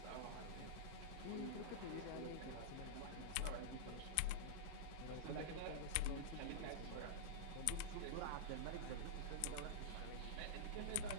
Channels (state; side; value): different; both; correlation -0.03